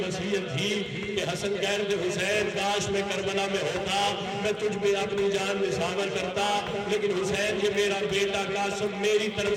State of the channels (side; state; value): both; identical; correlation 1.00